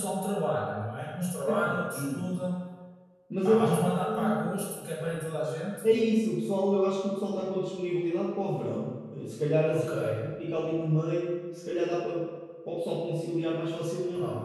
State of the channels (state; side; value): identical; both; correlation 1.00